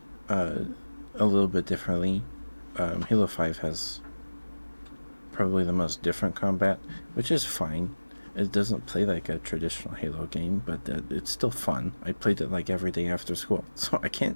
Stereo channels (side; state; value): both; inverted; correlation -1.00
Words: uh, a little bit differently. Halo 5 has probably the most different combat, which is fine. It doesn't play like a traditional Halo game, but it's still fun. I played it like every day after school, so I